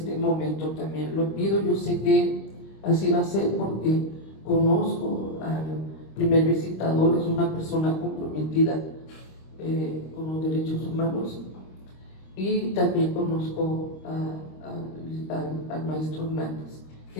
momento también lo pido. Yo sé que así va a ser porque conozco al primer visitador, es una persona comprometida con los derechos humanos, y también conozco al maestro Hernández,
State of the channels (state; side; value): late; right; 26 ms